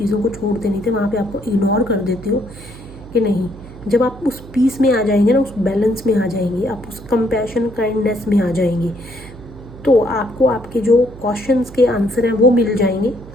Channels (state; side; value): noise; right; hum, 17 dB below the sound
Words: को छोड़ते नहीं थे, वहाँ पे आपको इग्नोर कर देते हो कि नहीं, जब आप उस पीस में आ जाएंगे ना, उस बैलेंस में आ जाएंगे, आप उस कंपैशन, काइंडनेस में आ जाएंगे, तो आपको आपके जो क्वेश्चंस के आंसर हैं वो मिल जाएंगे।